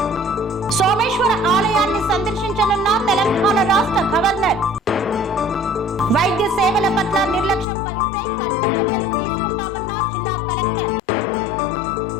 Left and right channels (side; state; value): right; drops out; at 7.7 s